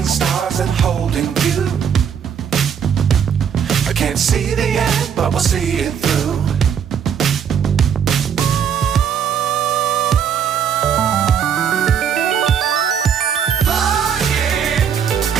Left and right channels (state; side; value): quieter; left; 7.9 dB